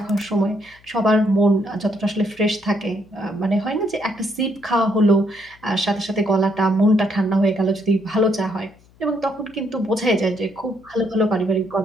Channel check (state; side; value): noise; left; hum, 29 dB below the sound